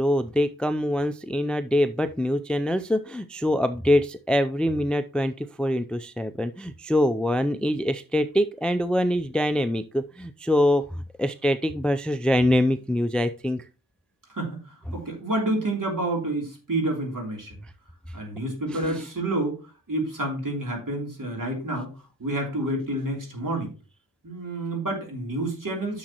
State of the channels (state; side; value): normal; both; correlation 0.75